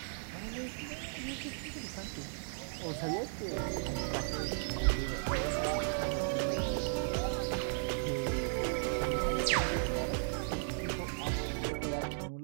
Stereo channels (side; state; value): left; silent; digital silence